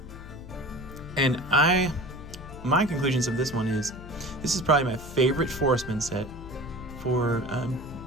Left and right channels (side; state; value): left; noise; hum, 14 dB below the sound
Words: And my conclusions of this one is, this is probably my favorite Forestmen set for